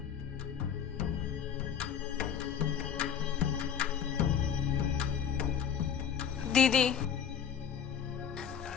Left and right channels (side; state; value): right; quieter; 8.1 dB